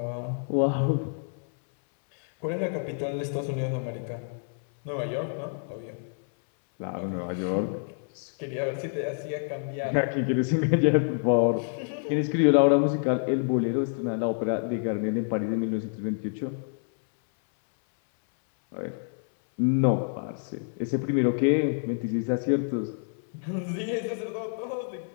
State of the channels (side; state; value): right; silent; 59 dB below the other